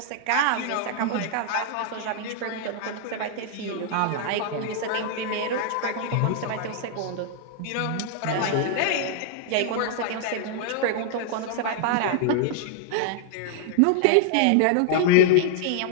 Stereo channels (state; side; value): different; both; correlation 0.00